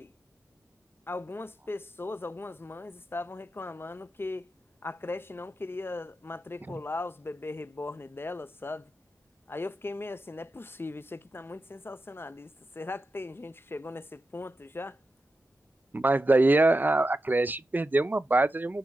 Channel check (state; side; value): normal; both; correlation 0.89